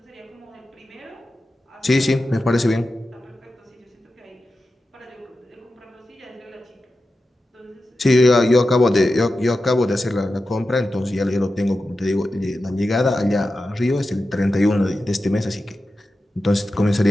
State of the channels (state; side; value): normal; both; correlation 0.92